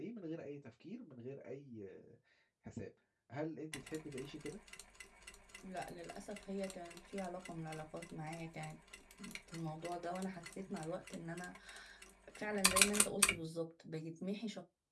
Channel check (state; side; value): identical; both; correlation 1.00